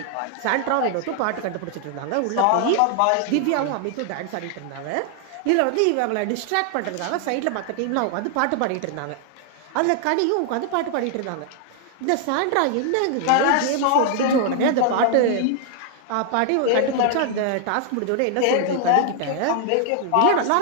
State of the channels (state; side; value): different; both; correlation 0.00